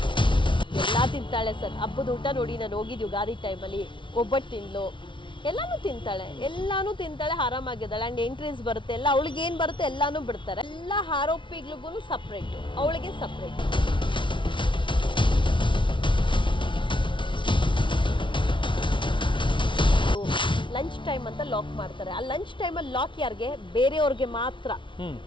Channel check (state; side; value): late; right; 0.24 ms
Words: ಎಲ್ಲಾ ತಿಂತಾಳೆ ಸರ್. ಹಬ್ಬದ ಊಟ ನೋಡಿ, ನಾನು ಹೋಗಿದ್ದು ಯುಗಾದಿ ಟೈಮಲ್ಲಿ, ಒಬ್ಬಟ್ಟು ತಿಂದ್ಲು, ಎಲ್ಲಾನು ತಿಂತಾಳೆ, ಆರಾಮಾಗಿದ್ದಾಳೆ. ಅಂಡ್ ಎಂಟ್ರೀಸ್ ಬರುತ್ತೆ, ಎಲ್ಲ ಅವಳಿಗೆ ಏನ್ ಬರುತ್ತೆ ಎಲ್ಲಾನು ಬಿಡ್ತಾರೆ. ಎಲ್ಲ ಆರೋಪಿಗಳಿಗೂ ಸಪ್ರೇಟ್, ಅವಳಿಗೆ ಸಪ್ರೇಟ್. ಲಂಚ್ ಟೈಮ್ ಅಂತ ಲಾಕ್ ಮಾಡ್ತಾರೆ. ಆ ಲಂಚ್ ಟೈಮಲ್ಲಿ ಲಾಕ್ ಯಾರಿಗೆ? ಬೇರೆಯವ್ರಿಗೆ ಮಾತ್ರ.